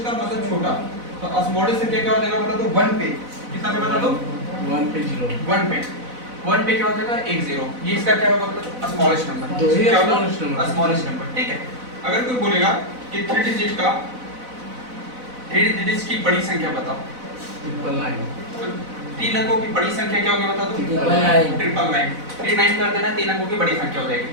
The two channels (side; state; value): left; late; 4.0 ms